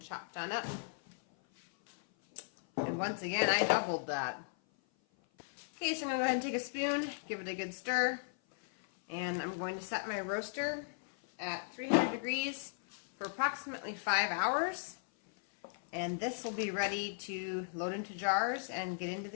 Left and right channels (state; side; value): silent; right; 53 dB below the other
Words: on up. And once again, I doubled that. Okay, so I'm going to go ahead and take a spoon, give it a good stir, and I'm going to set my roaster at 300 degrees for approximately 5 hours. And this will be ready to load into jars and get into